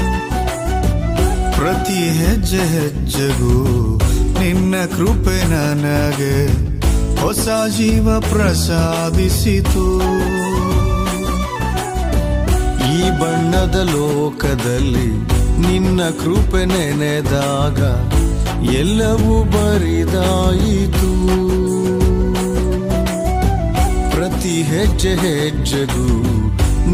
ಪ್ರತಿ ಹೆಜ್ಜೆ ಹೆಜ್ಜೆಗೂ ನಿನ್ನ ಕೃಪೆ ನನಗೆ ಹೊಸ ಜೀವ ಪ್ರಸಾದಿಸಿತು. ಈ ಬಣ್ಣದ ಲೋಕದಲ್ಲಿ ನಿನ್ನ ಕೃಪೆ ನೆನೆದಾಗ ಎಲ್ಲವೂ ಬರಿದಾಯಿತು. ಪ್ರತಿ ಹೆಜ್ಜೆ ಹೆಜ್ಜೆಗೂ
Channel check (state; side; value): identical; both; correlation 1.00